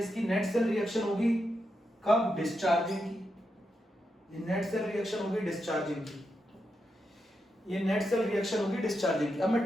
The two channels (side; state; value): both; normal; correlation 0.85